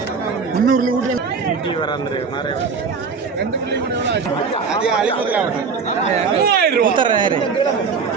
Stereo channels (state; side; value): quieter; left; 5.4 dB